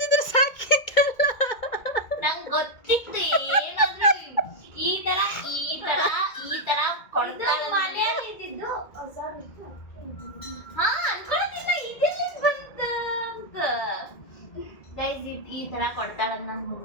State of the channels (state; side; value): late; right; 1.9 ms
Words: ಸಾಕಿತ್ತಲ್ಲ. ನಂಗೆ ಗೊತ್ತಿತ್ತು ಏನಾದ್ರೂ ಈ ತರ ಕೊಡ್ತಾಳೆ. ಮನೆಯಲ್ಲಿ ಇದ್ದಿದ್ದು ಹೊಸದಿತ್ತು. ಹಾ ಅನ್ಕೊಳ್ಳೋದಿಲ್ಲ ಇದೆಲ್ಲ ಬಂತ ಅಂತ. ಗೈಸ್ ಈ ತರ ಕೊಡ್ತಾಳಂತ ನಂಗೆ